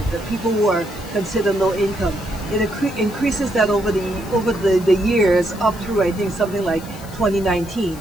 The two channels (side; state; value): left; noise; hiss, 20 dB below the sound